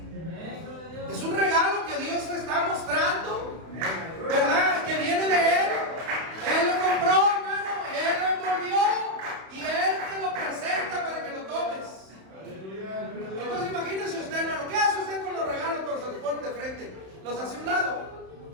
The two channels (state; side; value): late; left; 31 ms